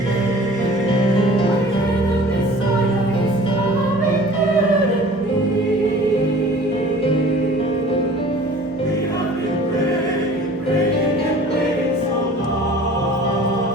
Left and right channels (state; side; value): normal; both; correlation 0.46